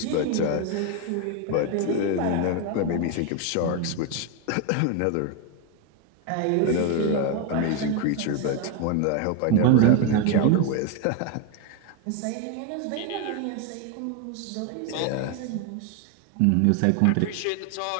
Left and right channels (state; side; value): different; both; correlation 0.01